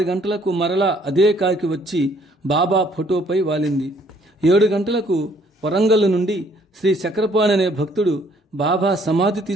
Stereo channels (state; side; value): normal; both; correlation 0.62